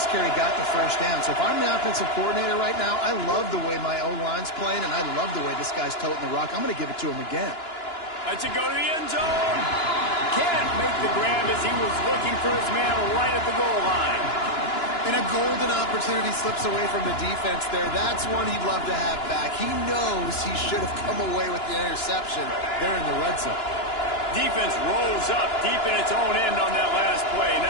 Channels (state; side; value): late; right; 2.9 ms